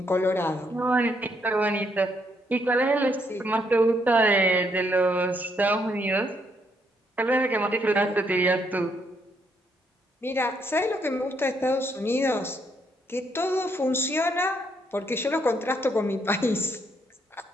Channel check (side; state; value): both; normal; correlation 0.73